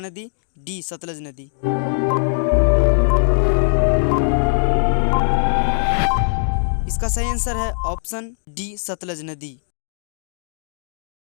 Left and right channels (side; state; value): right; silent; digital silence